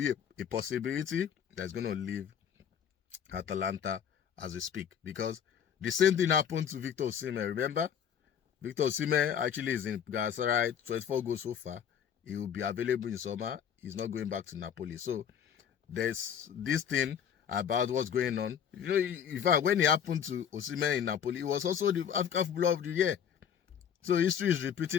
a possibility that's going to leave Atalanta as we speak. Because the same thing happened to Victor Osimhen. Remember? Victor Osimhen actually is in Galatasaray, 24 goals so far. He will be available in summer. He's not going back to Napoli. So there's this thing about what's going on. In fact, when it happened to Osimhen in Napoli, it was also the African Footballer of the Year. So history is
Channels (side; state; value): right; quieter; 8.3 dB